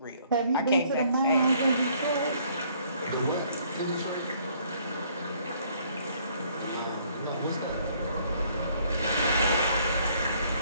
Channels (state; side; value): inverted; both; correlation -0.63